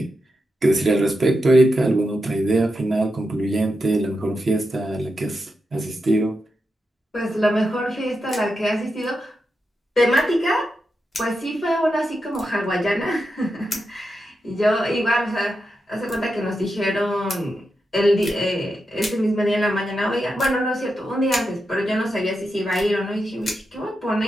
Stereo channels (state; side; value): normal; both; correlation 0.87